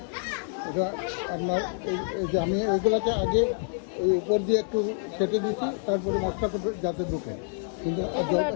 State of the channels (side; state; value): right; silent; digital silence